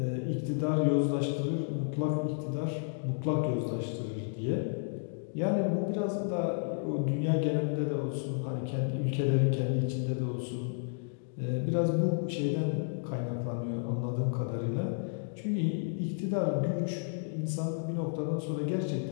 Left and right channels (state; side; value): silent; right; digital silence